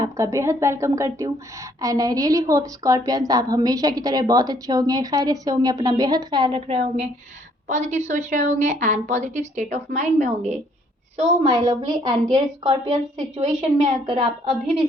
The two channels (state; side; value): normal; both; correlation 0.65